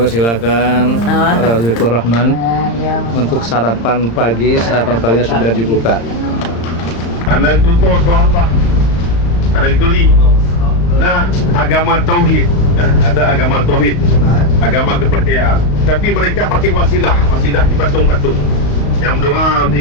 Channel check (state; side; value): late; right; 35 ms